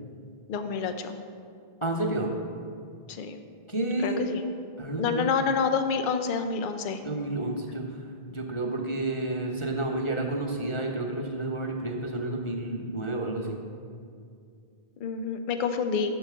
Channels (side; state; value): right; late; 1.4 ms